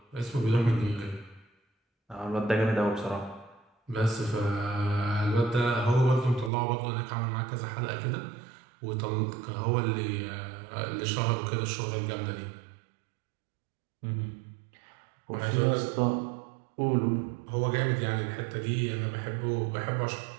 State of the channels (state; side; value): drops out; left; at 6.5 s